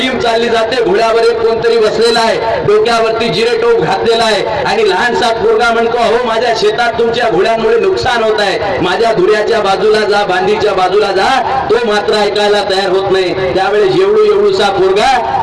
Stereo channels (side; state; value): both; identical; correlation 1.00